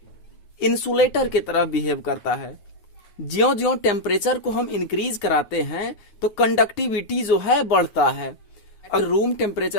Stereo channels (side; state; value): right; late; 9.4 ms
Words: इंसुलेटर की तरह बिहेव करता है। ज्यों ज्यों टेम्परेचर को हम इंक्रीज कराते हैं तो कंडक्टिविटी जो है बढ़ता है। अगर रूम